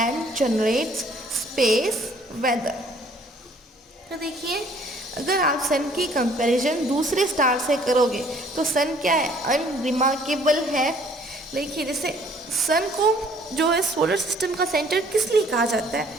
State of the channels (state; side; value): normal; both; correlation 0.59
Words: generates space weather। तो देखिए अगर आप सन की comparison दूसरे star से करोगे तो सन क्या है? अनरिमार्केबल है। देखिए जैसे सन को जो है सोलर सिस्टम का सेंटर किस लिए कहा जाता है?